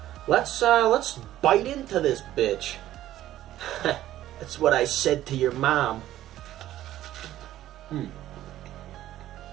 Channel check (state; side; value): quieter; left; 13.5 dB